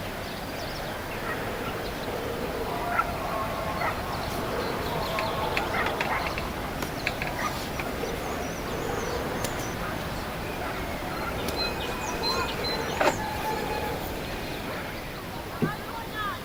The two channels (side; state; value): both; identical; correlation 1.00